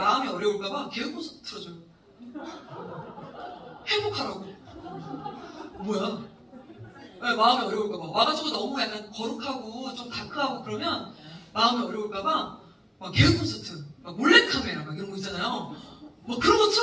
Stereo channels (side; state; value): both; identical; correlation 1.00